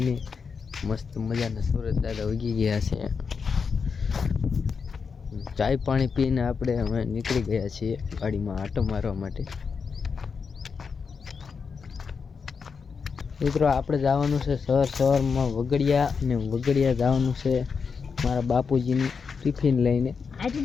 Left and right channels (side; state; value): right; quieter; 5.6 dB